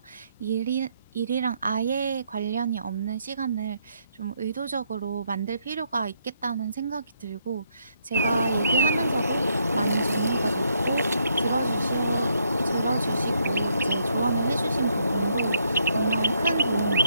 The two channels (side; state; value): both; inverted; correlation -0.74